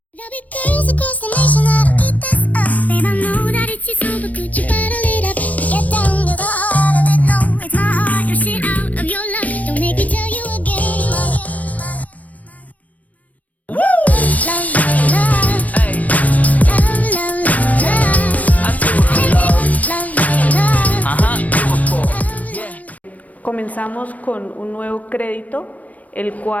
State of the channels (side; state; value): right; late; 0.071 ms